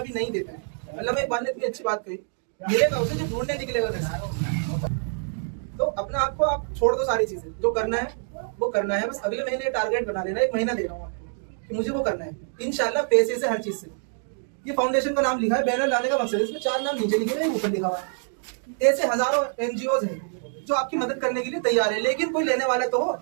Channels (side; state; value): left; silent; digital silence